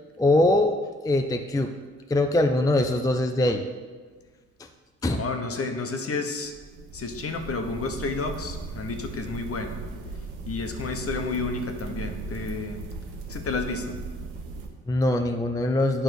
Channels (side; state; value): both; normal; correlation 0.63